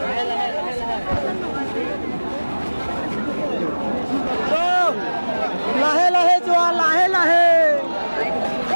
লাহে লাহে যোৱা, লাহে লাহে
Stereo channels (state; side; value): inverted; both; correlation -1.00